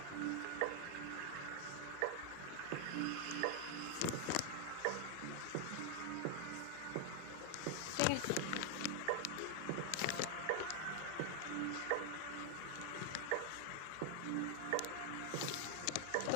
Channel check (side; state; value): both; different; correlation 0.00